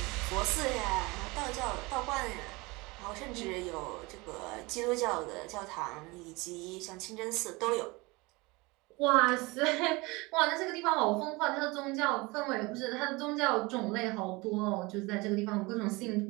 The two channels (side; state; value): left; quieter; 24.4 dB